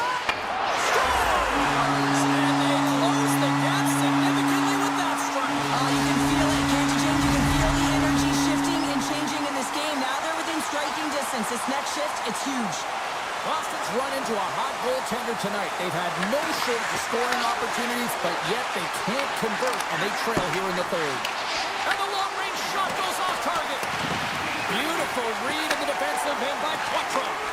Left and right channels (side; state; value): both; identical; correlation 1.00